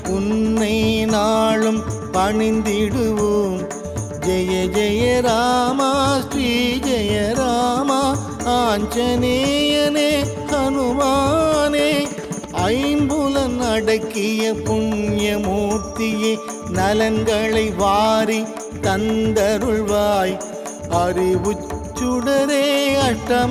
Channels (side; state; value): both; identical; correlation 1.00